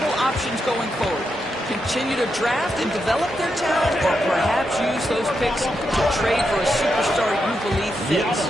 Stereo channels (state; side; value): normal; both; correlation 0.84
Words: options going forward. Continue to draft and develop their talent, or perhaps use those picks to trade for a superstar you believe fits.